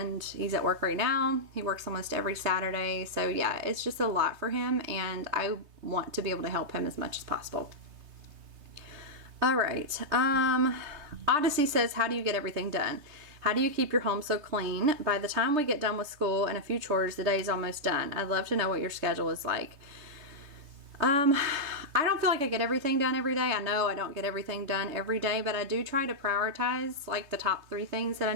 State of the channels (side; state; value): left; late; 3.3 ms